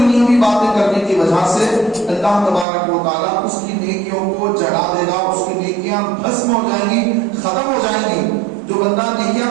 باتیں کرنے کی وجہ سے اللہ تبارک و تعالیٰ اس کی نیکیوں کو جڑا دے گا, اس کی نیکیاں بھسم ہو جائیں گی, ختم ہو جائیں گی. جو بندہ نیکیاں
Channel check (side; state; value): left; drops out; at 2.7 s